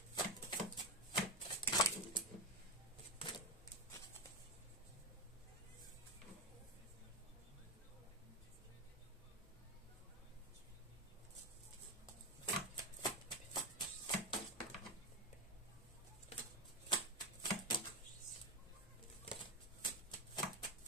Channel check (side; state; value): both; normal; correlation 0.12